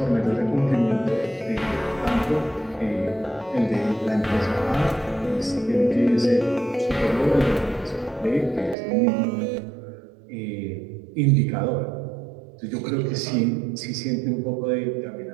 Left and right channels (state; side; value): drops out; left; at 8.8 s